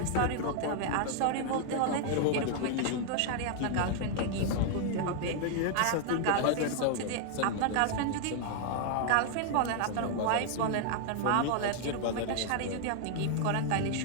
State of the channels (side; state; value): both; different; correlation 0.00